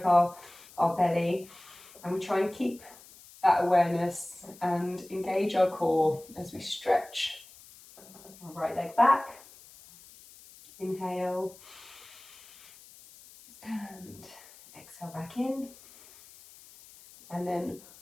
of our belly, and we try and keep that awareness and engage our core as we stretch our right leg back. Inhale and exhale back in, and then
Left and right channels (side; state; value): left; noise; hiss, 22 dB below the sound